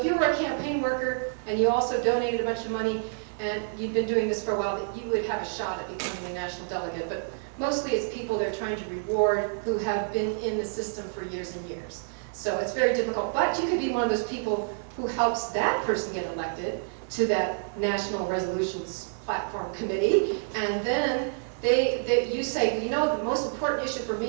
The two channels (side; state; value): left; silent; 59 dB below the other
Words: you were a campaign worker and you also donated a bunch of money and you've been doing this for a while, that you would have a shot at becoming a national delegate. But mostly it's people they're trying to reward who have been in the system for years and years. So it's very difficult. But you could be one of those people who helps that person get elected to that National Resolutions Platform Committee, and then you say, you know, the most important issue for